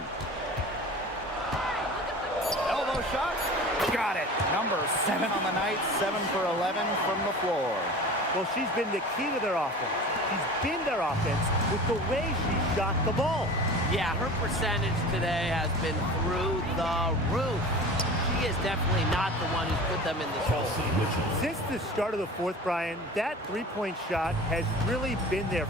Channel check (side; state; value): both; normal; correlation 0.38